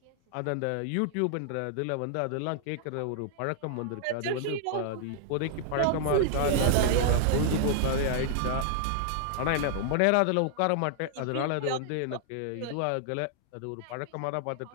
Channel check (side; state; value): both; different; correlation -0.01